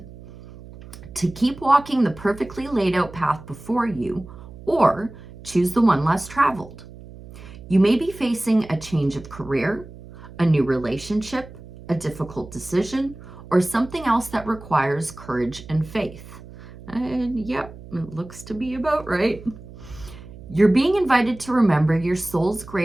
to keep walking the perfectly laid out path before you, or choose the one less traveled. You may be facing a change of career, a new relationship, a difficult decision, or something else that requires courage and faith. And yep, it looks to be about right. You're being invited to remember your soul's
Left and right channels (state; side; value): noise; right; hum, 17 dB below the sound